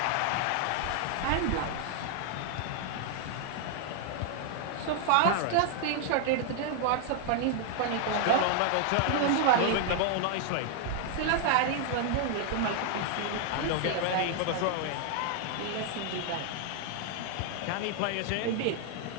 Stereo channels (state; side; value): different; both; correlation 0.00